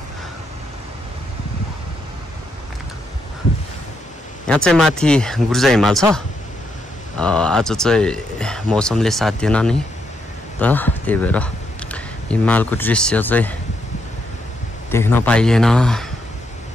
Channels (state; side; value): normal; both; correlation 0.78